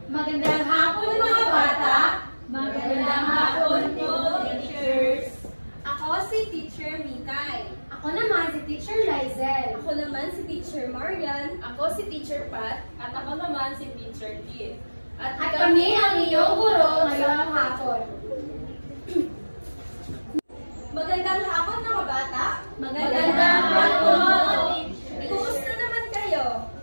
Magandang hapon mga bata! Magandang hapon po, teachers! Ako si Teacher Mikay. Ako naman si Teacher Lizel. Ako naman si Teacher Marian. Ako si Teacher Pat. At ako naman si Teacher Kit. At kami ang iyong guro ngayong hapon. Magandang hapon mga bata! Magandang hapon! Kumusta naman kayo?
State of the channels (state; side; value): inverted; both; correlation -1.00